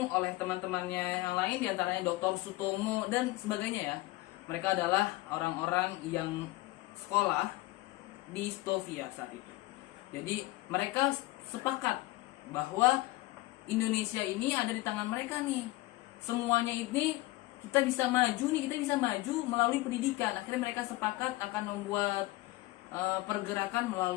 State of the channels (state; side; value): quieter; right; 19.3 dB